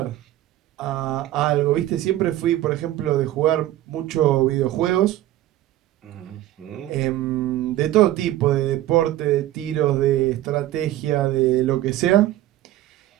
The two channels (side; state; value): left; quieter; 14.5 dB